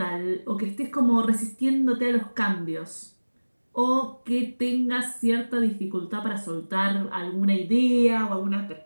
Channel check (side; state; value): both; inverted; correlation -1.00